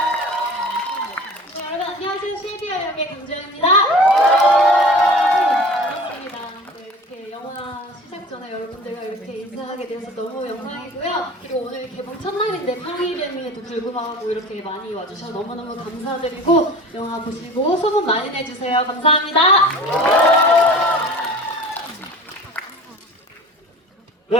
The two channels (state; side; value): normal; both; correlation 0.40